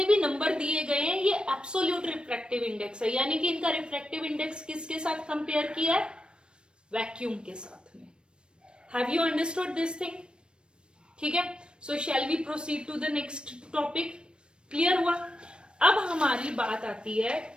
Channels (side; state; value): left; late; 0.055 ms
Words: भी नंबर दिए गए हैं ये एब्सोल्यूट रिफ्रैक्टिव इंडेक्स है, यानी कि इनका रिफ्रैक्टिव इंडेक्स किसके साथ कंपेयर किया है? वैक्यूम के साथ में. Have you understood this thing? ठीक है. So shall we proceed to the next topic. Clear हुआ? अब हमारी बात आती है